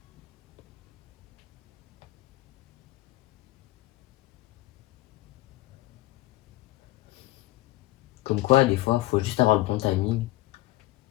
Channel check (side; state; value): right; quieter; 17.9 dB